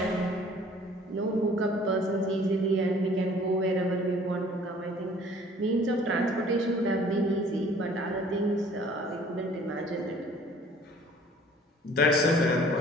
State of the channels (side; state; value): both; normal; correlation 0.53